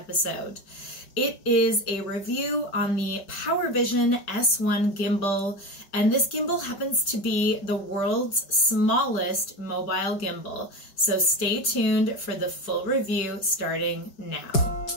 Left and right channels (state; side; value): late; right; 5.0 ms